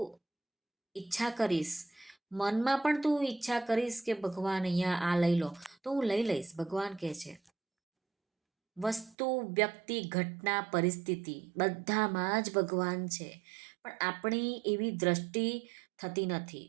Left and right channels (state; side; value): drops out; left; at 9.2 s